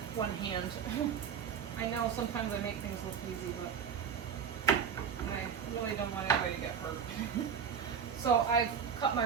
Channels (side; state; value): left; quieter; 7.2 dB